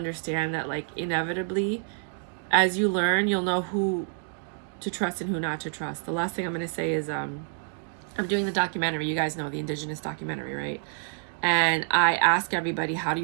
that, like, inevitably, as you learn, you'll know who to trust and who not to trust. The last thing I'm going to say is I'm doing the documentary. You guys know the Indigenous documentary, right? And I ask everybody, how do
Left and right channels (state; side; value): silent; left; 60 dB below the other